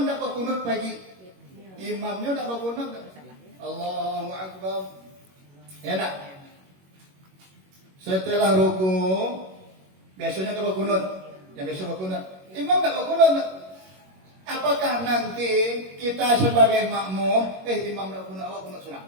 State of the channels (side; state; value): left; late; 21 ms